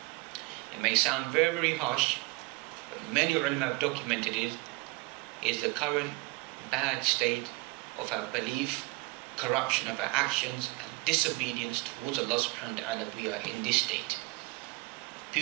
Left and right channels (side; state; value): left; quieter; 23.5 dB